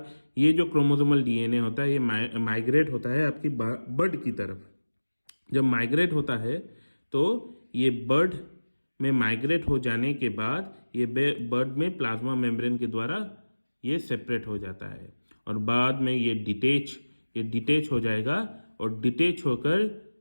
ये जो क्रोमोसोमल डीएनए होता है ये माइग्रेट होता है आपकी बड की तरफ। जब माइग्रेट होता है तो ये बड में माइग्रेट हो जाने के बाद ये बड में प्लाज्मा मेम्ब्रेन के द्वारा ये सेपरेट हो जाता है, और बाद में ये डिटेच हो जाएगा, और डिटेच होकर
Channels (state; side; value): inverted; both; correlation -1.00